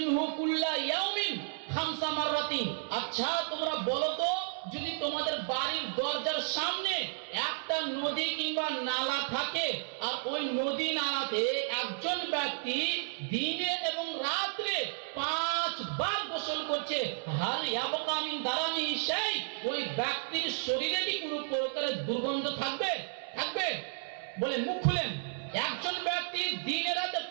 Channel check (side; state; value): left; silent; digital silence